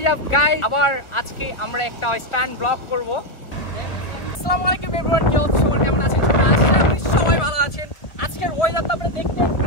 is up guys? আবার আজকে আমরা একটা স্ট্যান্ড ব্লগ করব। আসসালামু আলাইকুম एवरीवन, কি অবস্থা? সবাই কেমন আছেন? আশা করি সবাই ভালো আছেন। আজকের ওয়েদারটা আপনারা দেখতে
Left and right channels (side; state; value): right; late; 1.3 ms